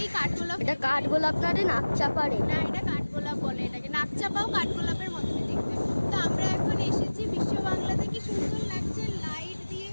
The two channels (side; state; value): both; inverted; correlation -1.00